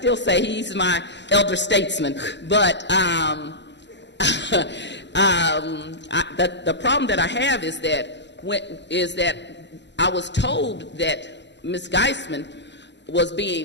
say he's my elder statesman. But the problem that I have is that I was told that Ms. Geisman was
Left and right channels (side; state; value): right; late; 0.52 ms